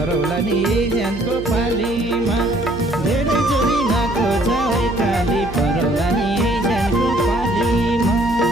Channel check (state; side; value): noise; right; hum, 12 dB below the sound